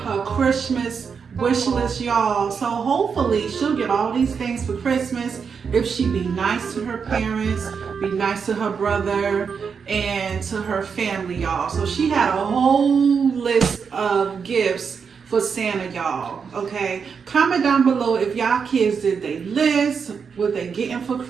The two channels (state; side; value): quieter; left; 6.1 dB